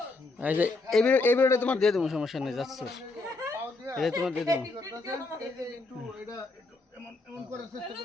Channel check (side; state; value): right; quieter; 3.4 dB